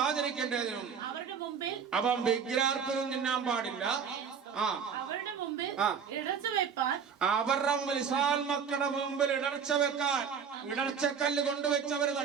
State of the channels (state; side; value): quieter; left; 6.8 dB